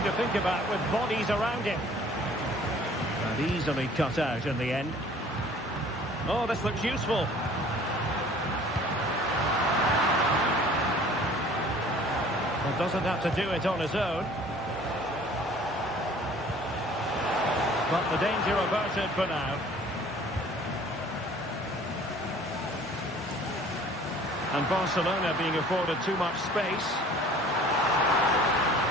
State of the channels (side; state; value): both; normal; correlation 0.51